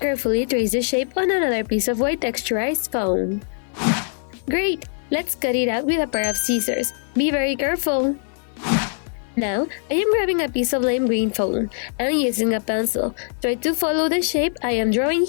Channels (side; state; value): right; silent; 55 dB below the other